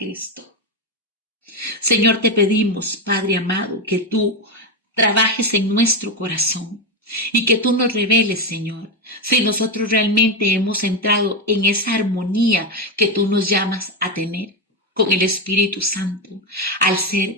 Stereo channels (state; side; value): normal; both; correlation 0.11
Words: Señor, te pedimos, Padre amado, que tú trabajes en nuestro corazón y que tú nos reveles, Señor, si nosotros realmente hemos entrado en esa armonía que tú nos llamas a tener con el Espíritu Santo, al